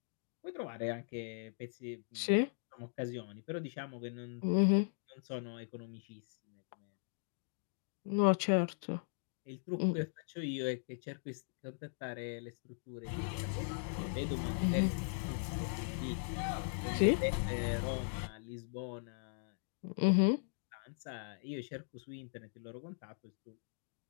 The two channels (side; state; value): right; silent; digital silence